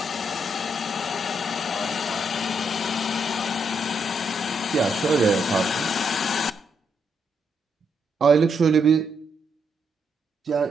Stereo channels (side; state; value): both; normal; correlation 0.78